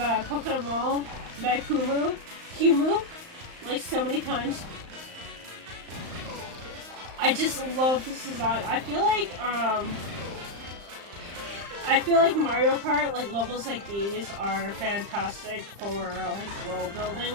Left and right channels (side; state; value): left; late; 35 ms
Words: Coconut Mall by Kumu, like so many times. I just love this design. I feel like Mario Kart, like levels like these are fantastic for like world building